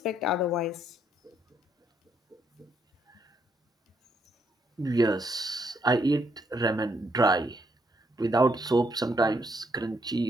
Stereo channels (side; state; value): both; normal; correlation 0.73